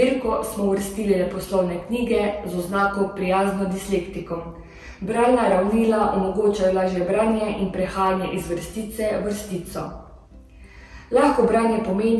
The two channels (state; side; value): identical; both; correlation 1.00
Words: smo uvrstili leposlovne knjige z oznako prijazno dislektikom. Bralna ravnila omogočajo lažje branje in prehajanje iz vrstice v vrstico. Lahko branje